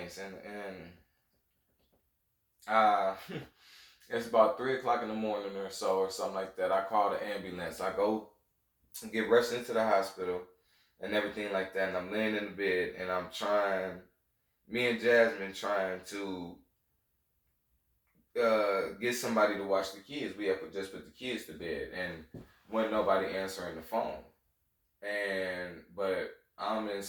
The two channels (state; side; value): identical; both; correlation 1.00